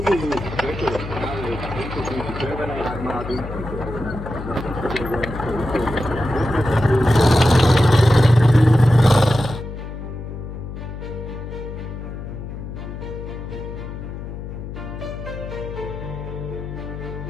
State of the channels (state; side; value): noise; left; hum, 9 dB below the sound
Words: prečo práve tento týmy Červenej armády,